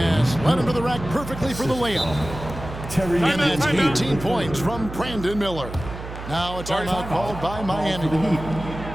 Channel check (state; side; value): noise; right; hum, 10 dB below the sound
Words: Led him to the rack perfectly for the layup. And that's 18 points from Brandon Miller. Now a timeout called by Miami.